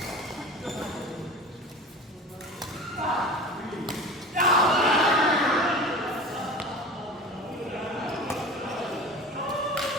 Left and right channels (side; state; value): both; normal; correlation 0.35